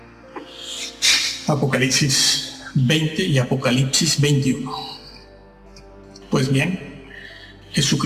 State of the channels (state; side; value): identical; both; correlation 1.00